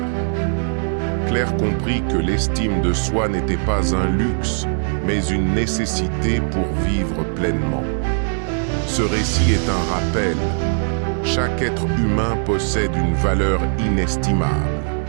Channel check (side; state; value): left; silent; 66 dB below the other